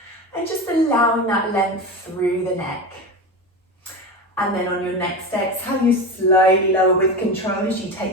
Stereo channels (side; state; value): both; normal; correlation 0.23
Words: and just allowing that length through the neck. And then on your next exhale, you slowly lower with control as you